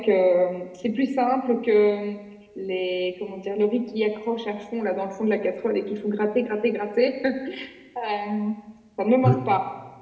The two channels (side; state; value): both; identical; correlation 1.00